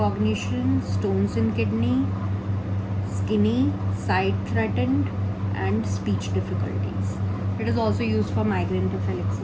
stones in kidney, skinny, sight threatened, and speech difficulties. It is also used for migraine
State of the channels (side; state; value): both; identical; correlation 1.00